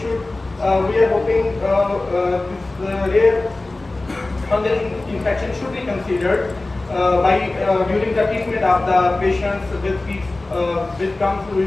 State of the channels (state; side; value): quieter; right; 3.0 dB